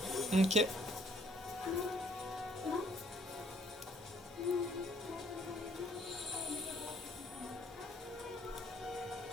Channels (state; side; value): normal; both; correlation 0.62